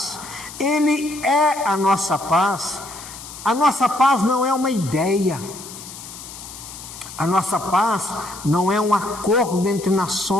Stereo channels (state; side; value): noise; left; hiss, 14 dB below the sound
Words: Ele é a nossa paz. A nossa paz não é uma ideia, a nossa paz não é um acordo entre